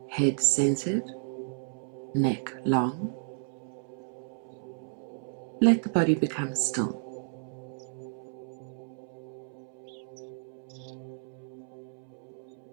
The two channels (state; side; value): silent; left; 56 dB below the other